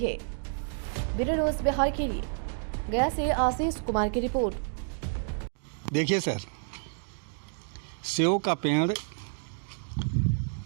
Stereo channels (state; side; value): silent; left; digital silence